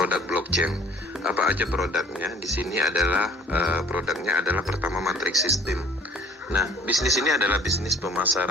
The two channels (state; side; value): normal; both; correlation 0.51